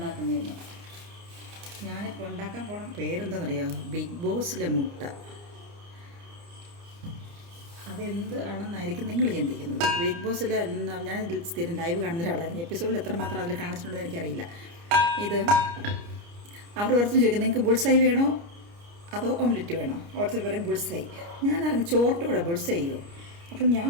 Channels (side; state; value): left; late; 29 ms